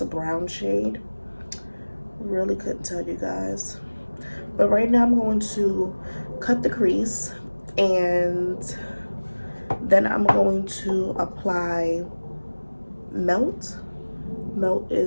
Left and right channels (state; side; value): inverted; both; correlation -1.00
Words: a brown shade. Really couldn't tell you guys. But right now I'm going to cut the crease, and then I'm going to apply Melt. Melt